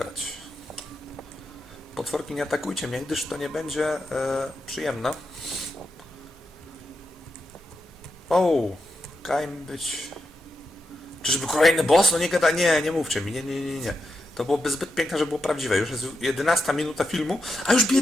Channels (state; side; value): normal; both; correlation 0.86